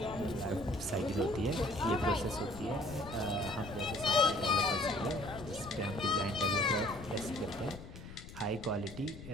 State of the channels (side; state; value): left; noise; rumble, 13 dB below the sound